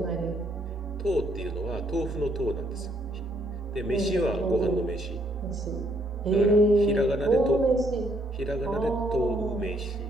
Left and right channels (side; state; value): both; normal; correlation 0.69